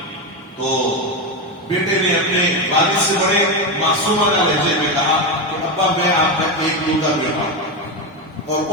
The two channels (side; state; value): both; normal; correlation 0.13